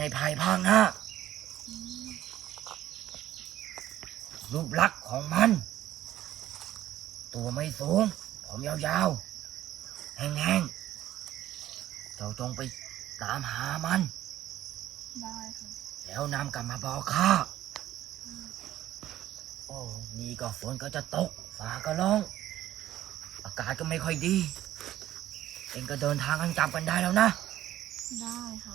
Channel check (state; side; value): quieter; left; 13.4 dB